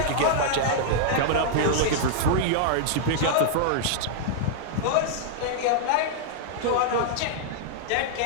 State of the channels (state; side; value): different; both; correlation -0.02